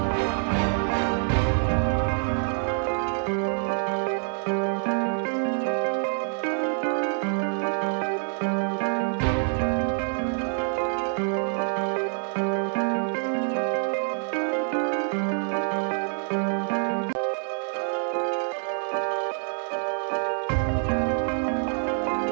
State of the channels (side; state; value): left; silent; 61 dB below the other